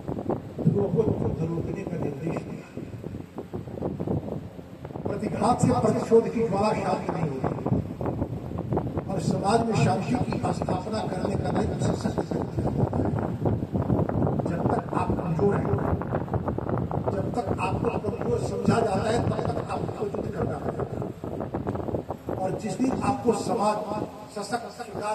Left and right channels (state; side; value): identical; both; correlation 1.00